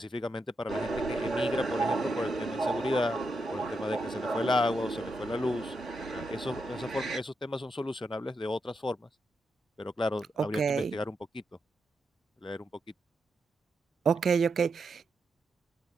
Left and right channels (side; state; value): both; normal; correlation 0.84